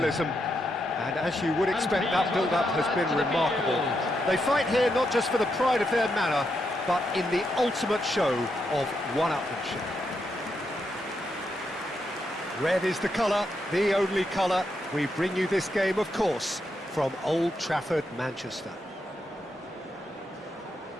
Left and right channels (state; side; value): normal; both; correlation 0.82